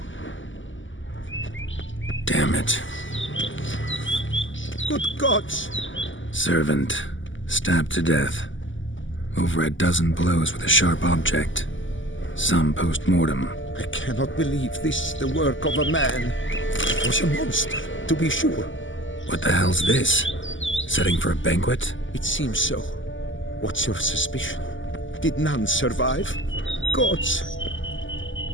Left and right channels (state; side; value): late; right; 0.56 ms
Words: Damn it. Good gods! Servant. Stabbed to death. Over a dozen blows with a sharp object. Some post-mortem. I cannot believe this is the work of a man. It was a monster, to be sure. What the hell's this? Setting for a banquet? It seems so. What's your suspicion? Did none survive? Gods!